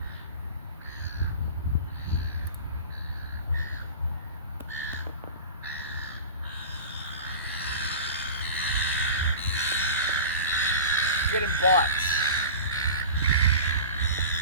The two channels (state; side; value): inverted; both; correlation -0.34